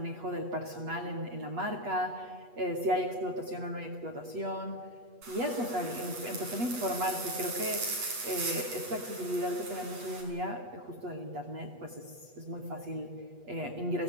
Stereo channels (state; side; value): late; left; 8.3 ms